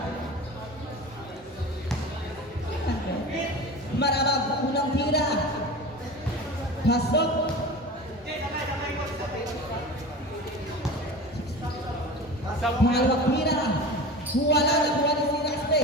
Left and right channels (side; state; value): both; normal; correlation 0.33